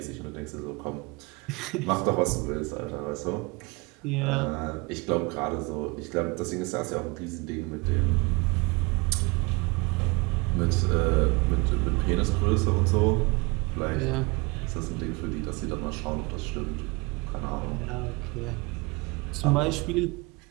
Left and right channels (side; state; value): left; quieter; 27.1 dB